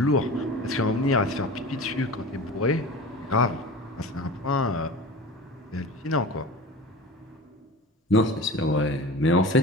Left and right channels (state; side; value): normal; both; correlation 0.34